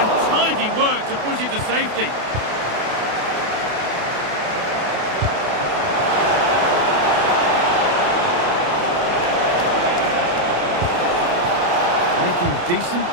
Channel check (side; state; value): left; late; 28 ms